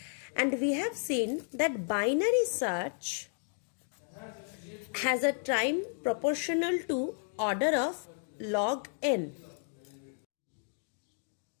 And we have seen that binary search has a time proportional to order of log n.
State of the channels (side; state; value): right; silent; 56 dB below the other